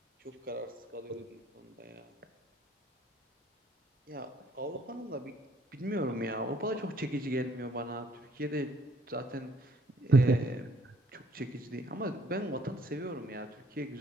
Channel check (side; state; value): both; normal; correlation 0.62